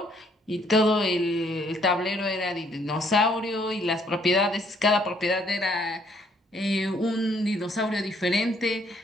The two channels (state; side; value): normal; both; correlation 0.66